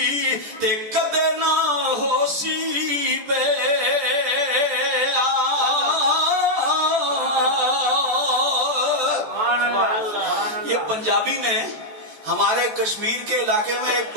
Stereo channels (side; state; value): left; late; 14 ms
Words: تے کدے نہ ہو سی بے۔ یہ پنجابی میں ہمارے کشمیر کے علاقے میں ایک